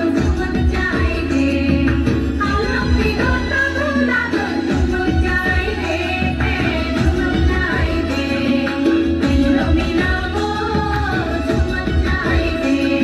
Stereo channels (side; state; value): both; identical; correlation 1.00